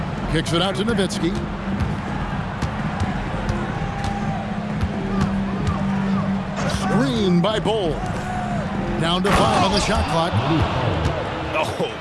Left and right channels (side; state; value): both; identical; correlation 1.00